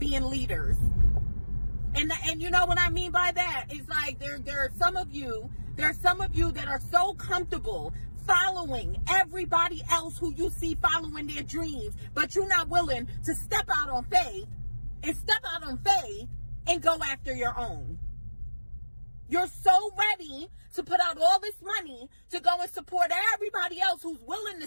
leaders. And you know what I mean by that? It's like there are some of you that are so comfortable following everybody else who you see following their dreams, but you're not willing to step out on faith and go after your own. You're so ready to put out all this money to go and support everybody else who's willing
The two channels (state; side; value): inverted; both; correlation -1.00